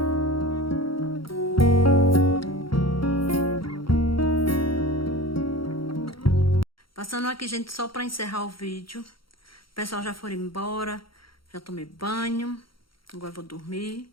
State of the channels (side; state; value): right; late; 0.74 ms